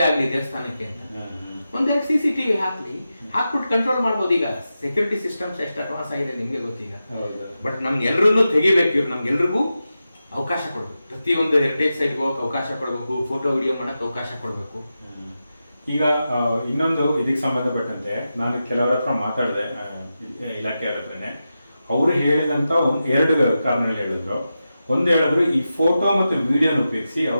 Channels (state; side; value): inverted; both; correlation -0.91